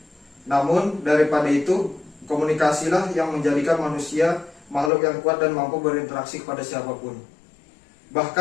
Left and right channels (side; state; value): right; drops out; at 4.9 s